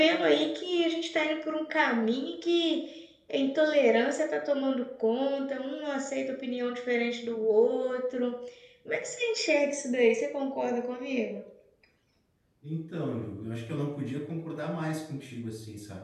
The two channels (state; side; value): identical; both; correlation 1.00